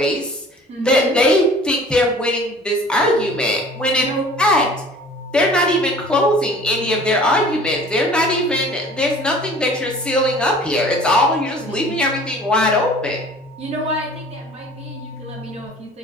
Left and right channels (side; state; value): both; normal; correlation 0.48